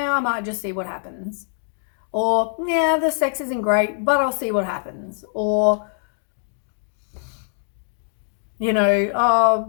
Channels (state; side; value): silent; right; digital silence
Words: I might just see what happens. Or, yeah, the sex isn't great, but I'll see what happens. Or, you know, oh,